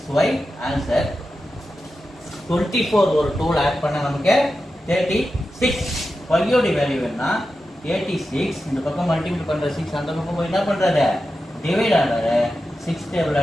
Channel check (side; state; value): both; normal; correlation 0.91